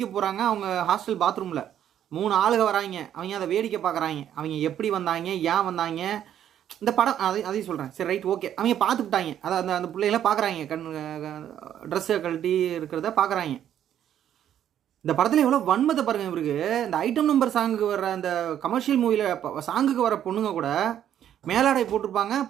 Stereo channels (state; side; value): quieter; left; 10.4 dB